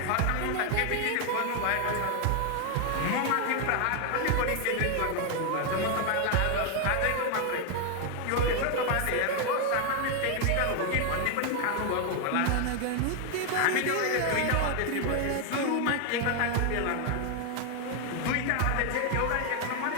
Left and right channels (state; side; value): different; both; correlation 0.00